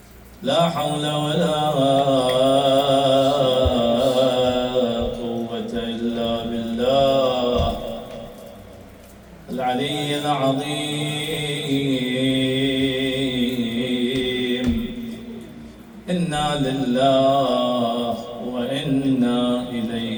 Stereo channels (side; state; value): both; identical; correlation 1.00